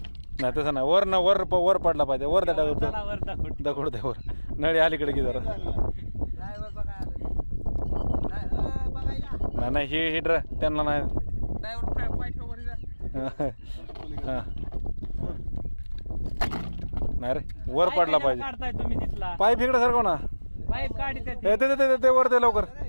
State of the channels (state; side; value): inverted; both; correlation -1.00